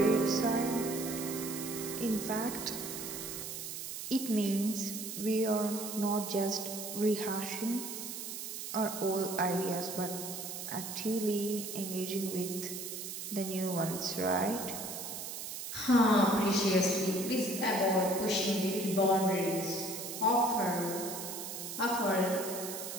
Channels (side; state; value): right; noise; hiss, 7 dB below the sound